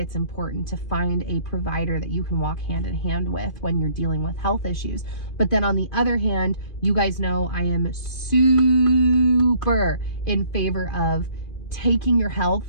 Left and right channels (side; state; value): right; late; 2.4 ms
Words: important to find a provider that you can walk hand in hand with when you're dealing with health issues. But then on the other hand, you guys know I am super in favor of taking your health